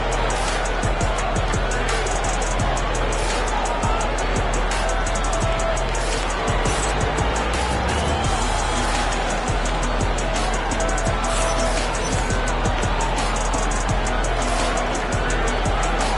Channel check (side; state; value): both; identical; correlation 1.00